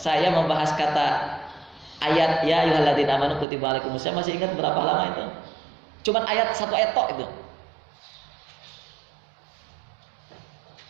membahas kata ayat ya ayyuhalladzina amanu kutiba alaikumus syiyam, masih ingat berapa lama itu? Cuman satu ayat tok itu.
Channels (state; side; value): drops out; left; at 3.5 s